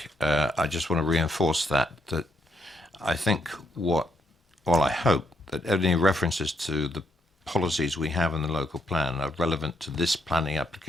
I just want to reinforce that I think I hope that any references to the policies we have in the local plan are relevant to this planning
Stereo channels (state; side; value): normal; both; correlation 0.75